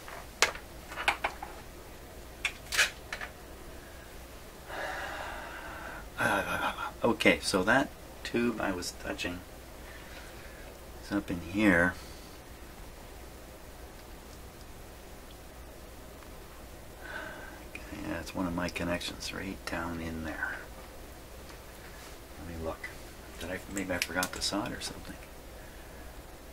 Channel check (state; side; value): identical; both; correlation 1.00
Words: Okay, so that tube I was touching is up in here. Okay, yeah, it's one of my connections right down in there. Let me look. Maybe I forgot to solder something.